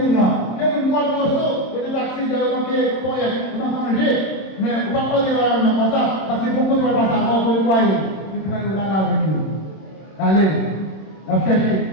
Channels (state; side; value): late; right; 26 ms